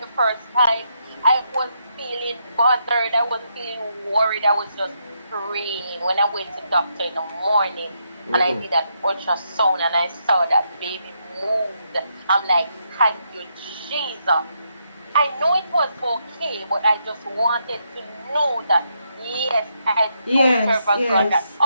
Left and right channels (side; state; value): both; inverted; correlation -0.79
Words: the first time. I wasn't feeling bothered. I wasn't feeling worried. I was just praying. When I went to the doctor in the morning, and I did that ultrasound, and I saw that baby moved, I'm like, thank you, Jesus. I know it was okay, but I just wanted to know that, yes, I serve a God that